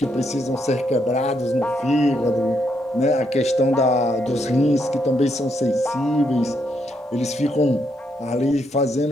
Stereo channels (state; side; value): normal; both; correlation 0.77